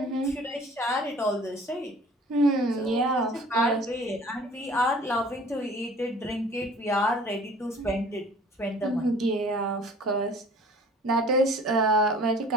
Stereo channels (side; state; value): both; normal; correlation 0.50